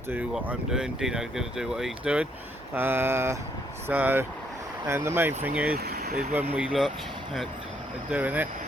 do what I'm doing. Dino's going to do what he's doing. And the main thing is when we look at doing it,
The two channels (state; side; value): normal; both; correlation 0.71